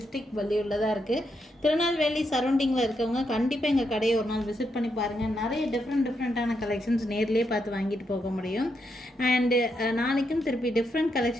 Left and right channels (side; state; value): both; normal; correlation 0.81